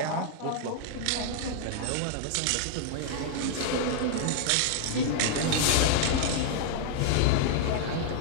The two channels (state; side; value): different; both; correlation -0.01